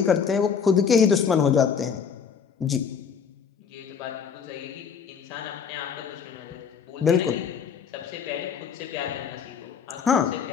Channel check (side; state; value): right; quieter; 6.7 dB